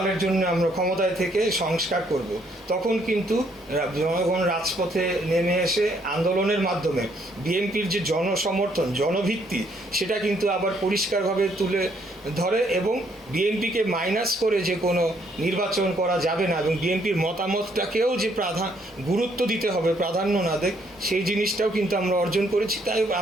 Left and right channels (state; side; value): normal; both; correlation 0.69